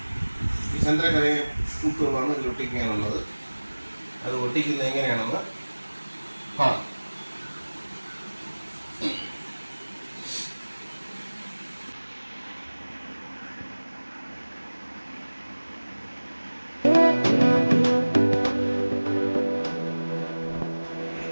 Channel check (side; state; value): both; inverted; correlation -1.00